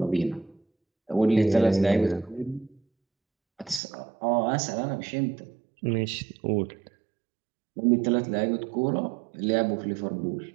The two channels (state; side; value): drops out; left; at 3.8 s